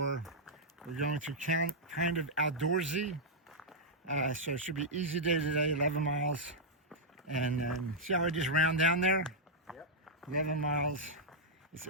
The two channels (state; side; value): normal; both; correlation -0.06